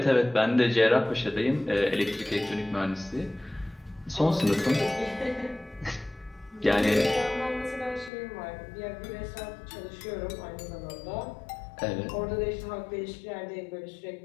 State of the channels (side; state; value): right; drops out; at 8.1 s